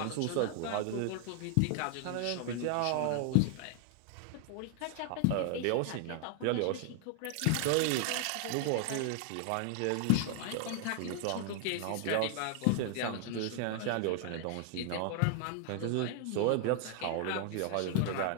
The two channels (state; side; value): different; both; correlation 0.00